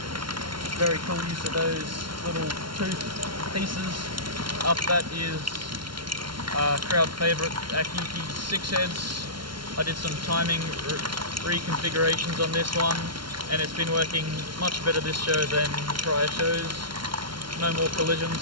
Very cool use of those little tooth pieces. Up that is crowd favourite Akiki 6 heads. I did some timing reconfigurations on this one, and it's been working much better this show than prior shows. No more collisions,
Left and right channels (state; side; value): late; left; 0.73 ms